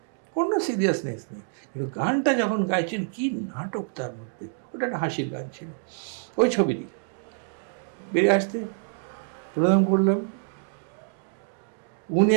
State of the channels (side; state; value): left; silent; digital silence